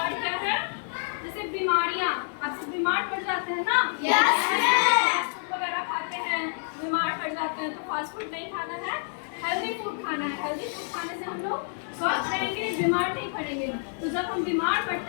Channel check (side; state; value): right; silent; digital silence